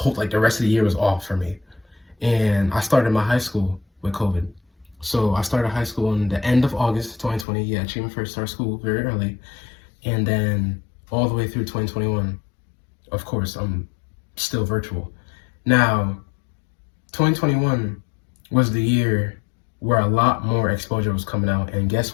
rest of the year was off for me. And I started my high school with COVID. So I started high school in the end of August 2020. Yeah, Achievement First started school very early. And then all the way through 2021, of course, I'm still virtual. Now, 2021 was the year where a lot more exposure was coming out. And guess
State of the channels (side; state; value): right; drops out; at 7.5 s